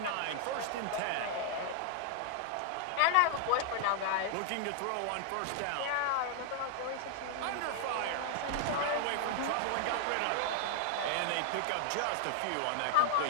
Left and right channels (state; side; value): different; both; correlation -0.01